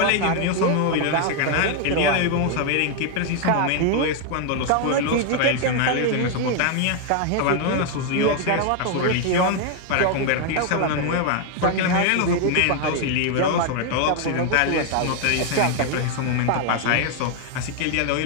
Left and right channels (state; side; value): different; both; correlation 0.01